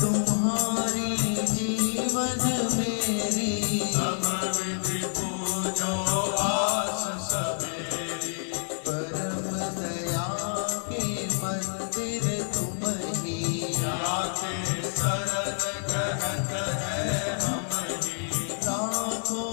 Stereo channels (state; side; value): silent; right; 57 dB below the other